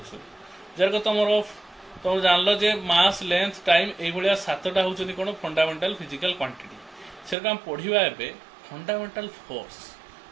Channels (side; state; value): left; drops out; at 7.4 s